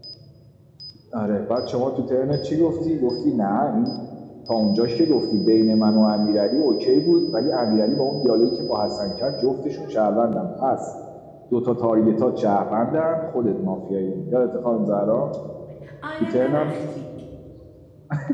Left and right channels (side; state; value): both; identical; correlation 1.00